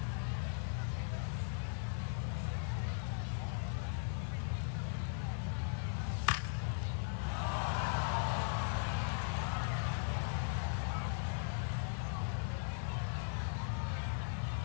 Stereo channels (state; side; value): silent; right; digital silence